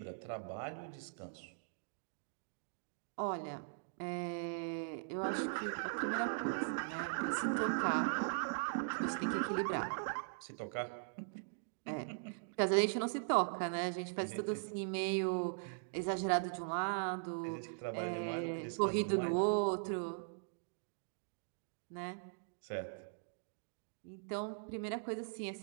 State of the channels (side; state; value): left; silent; digital silence